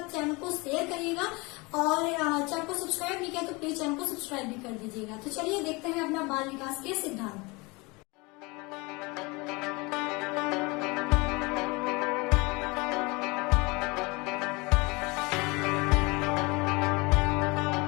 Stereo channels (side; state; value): right; quieter; 25.9 dB